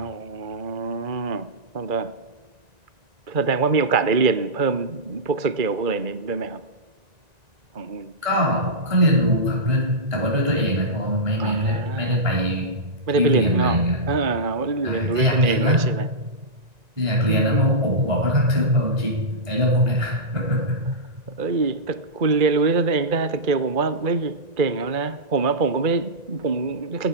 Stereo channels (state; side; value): late; left; 1.9 ms